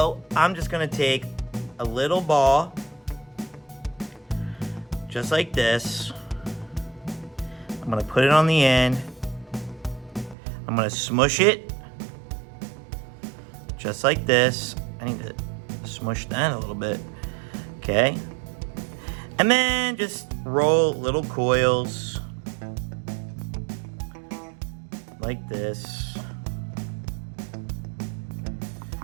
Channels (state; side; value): drops out; left; at 10.4 s